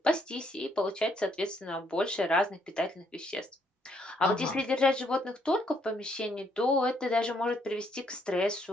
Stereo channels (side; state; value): both; normal; correlation 0.71